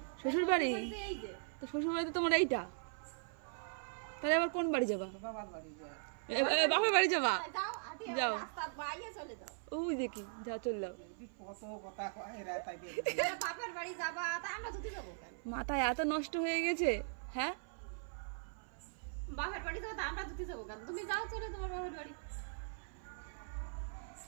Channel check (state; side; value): silent; left; 51 dB below the other